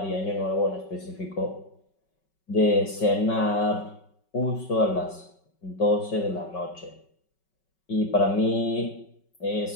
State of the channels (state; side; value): late; right; 5.3 ms